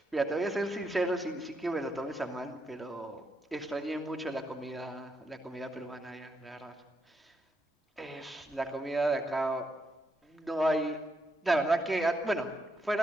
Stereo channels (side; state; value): both; normal; correlation 0.80